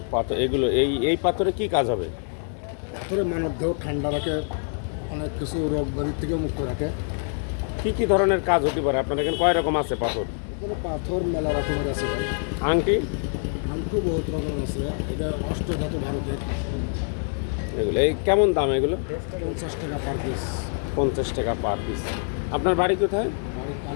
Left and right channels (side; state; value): right; silent; 57 dB below the other